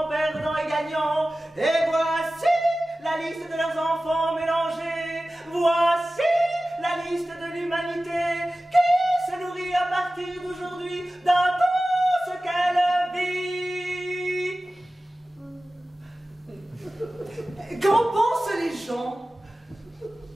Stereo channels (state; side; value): normal; both; correlation 0.96